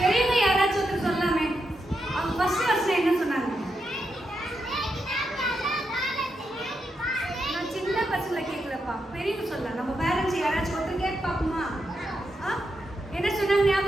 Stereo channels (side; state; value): both; normal; correlation 0.84